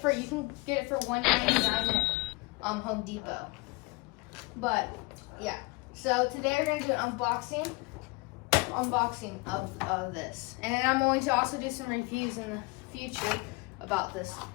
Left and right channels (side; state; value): right; quieter; 26.5 dB